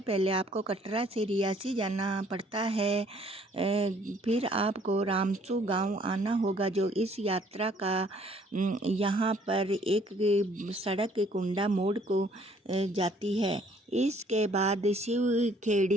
पहले आपको कटरा से रियासी जाना पड़ता है। फिर आपको रामसू गांव आना होगा, जो इस यात्रा का यहाँ पर एक सड़क कुंडा मोड़ को जाती है। इसके बाद शिव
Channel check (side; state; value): both; normal; correlation 0.61